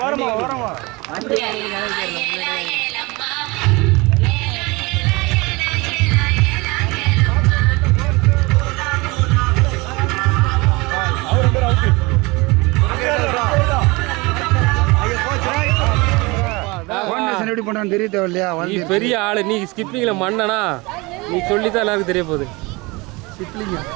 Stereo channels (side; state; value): left; quieter; 24.8 dB